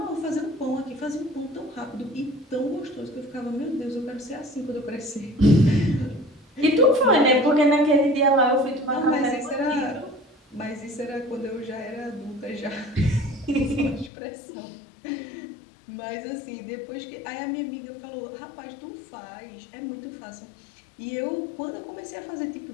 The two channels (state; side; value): drops out; right; at 14.1 s